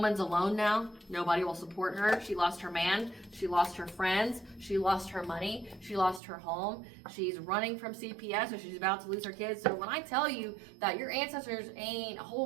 alone now. Nobody will support her. She lost her man. She lost her friends. She lost her money. She lost her home. She's running from CPS, so she's about to lose her kids. So when I tell you that your ancestors ain't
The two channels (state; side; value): drops out; left; at 6.2 s